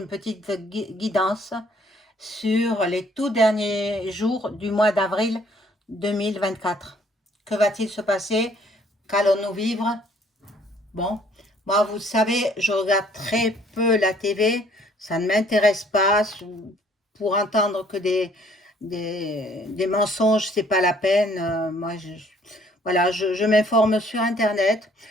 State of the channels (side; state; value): both; normal; correlation 0.61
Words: petite guidance sur les tout derniers jours du mois d'avril 2024. Que va-t-il se passer? Qu'allons-nous vivre? Bon, moi, vous savez, je regarde très peu la TV, ça ne m'intéresse pas. Pour entendre que des mensonges, c'est pas la peine. Moi, voilà, je m'informe sur Internet.